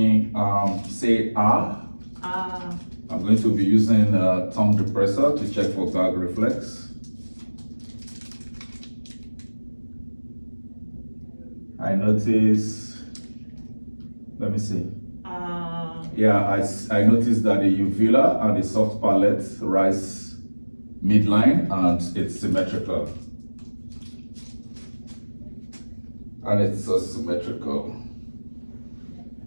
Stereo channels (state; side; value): inverted; both; correlation -1.00